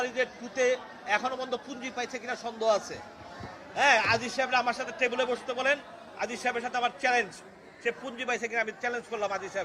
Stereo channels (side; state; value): both; identical; correlation 1.00